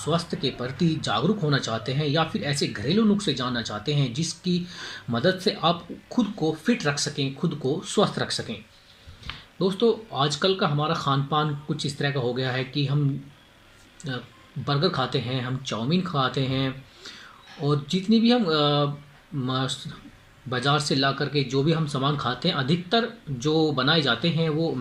के प्रति जागरूक होना चाहते हैं या फिर ऐसे घरेलू नुस्खे जानना चाहते हैं जिसकी मदद से आप खुद को फिट रख सकें, खुद को स्वस्थ रख सकें। दोस्तों, आजकल का हमारा खान पान कुछ इस तरह का हो गया है कि हम अ, बर्गर खाते हैं, हम चाउमीन खाते हैं और जितनी भी हम बाज़ार से ला करके जो भी हम सामान खाते हैं, अधिकतर जो बनाए जाते हैं वो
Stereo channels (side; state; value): both; identical; correlation 1.00